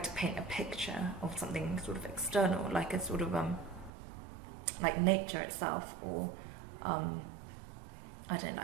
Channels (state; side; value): drops out; left; at 3.9 s